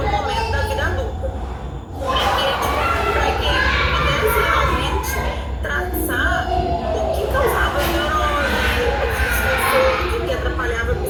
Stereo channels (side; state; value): both; identical; correlation 1.00